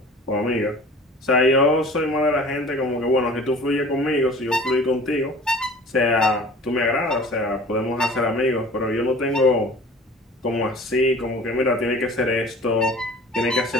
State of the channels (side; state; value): both; normal; correlation 0.44